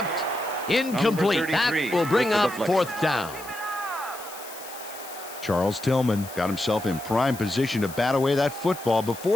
Incomplete. That will bring with the up deflection. 4th down. Charles Tillman got himself in prime position to bat away that football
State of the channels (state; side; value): noise; left; hiss, 15 dB below the sound